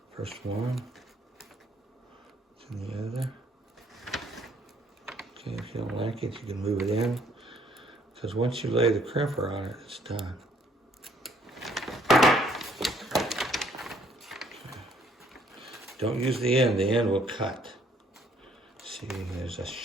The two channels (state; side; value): normal; both; correlation 0.65